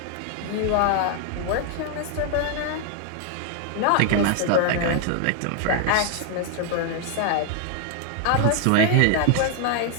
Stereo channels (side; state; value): both; different; correlation 0.00